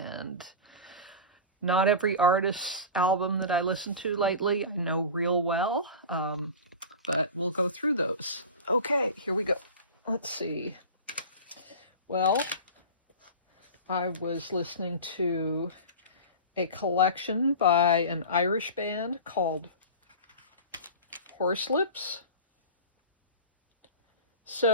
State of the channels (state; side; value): inverted; both; correlation -0.31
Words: not every artist's album that I listened to lately I know real well, but we'll go through those. Okay, here we go. Let's see. Well, I was listening to a collection by an Irish band called Horselips.